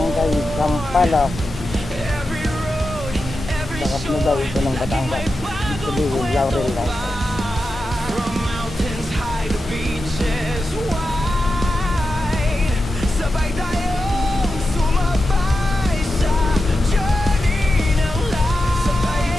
Sampalok. Sakap na daw ito ng Batangas. Sabihin, Laurel Light.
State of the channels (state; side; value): normal; both; correlation 0.91